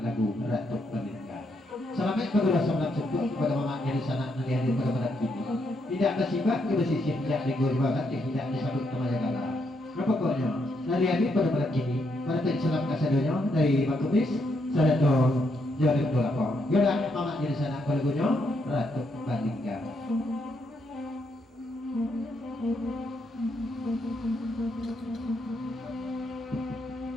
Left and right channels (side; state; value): both; normal; correlation 0.77